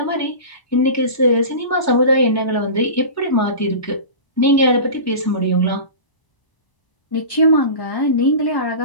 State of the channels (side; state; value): right; late; 1.0 ms